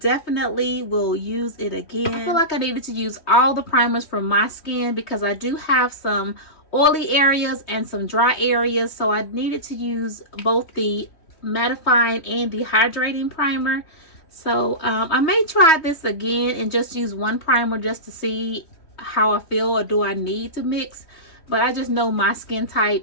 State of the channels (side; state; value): right; late; 3.2 ms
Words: will use it again. I feel like I needed to use all the primers for my skin because I do have some oily areas and some dry areas, so I needed to use both the mattifying and the hydrating primer. So I may try this again and just use one primer just to see how I feel, or do I need to mix. But I just know my skin